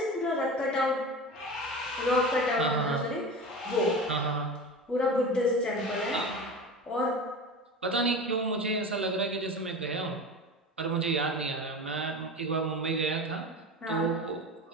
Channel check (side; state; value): both; normal; correlation 0.30